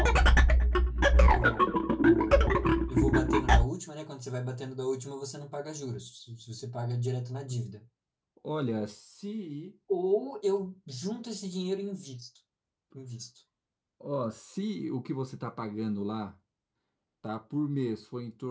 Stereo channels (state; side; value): identical; both; correlation 1.00